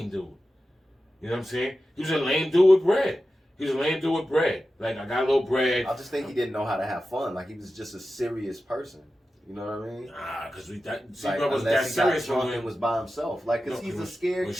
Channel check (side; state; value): both; normal; correlation 0.93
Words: dude. You know what I'm saying? He was a lame dude with bread. Like, I got a little bread. I just think he didn't know how to have fun. Like, he was just a serious person. You know what I mean? Because was Like, that unless he serious got drunk and was by himself. Like, because he's a scared when